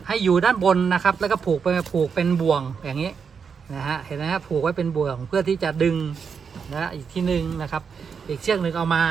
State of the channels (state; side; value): quieter; left; 6.2 dB